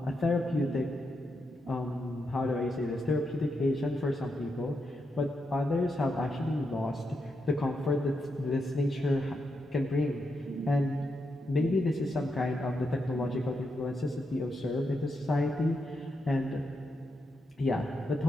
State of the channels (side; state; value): both; normal; correlation 0.84